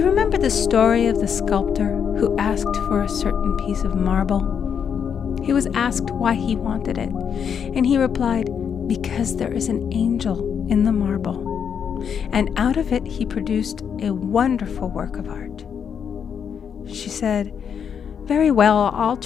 remember the story of the sculptor who asked for a certain piece of marble? He was asked why he wanted it, and he replied, 'Because there is an angel in the marble.' And out of it he produced a wonderful work of art." She said, "Very well, I'll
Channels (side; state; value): right; quieter; 7.5 dB